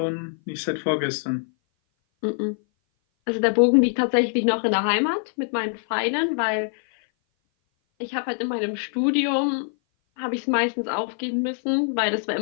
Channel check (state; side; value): silent; right; 58 dB below the other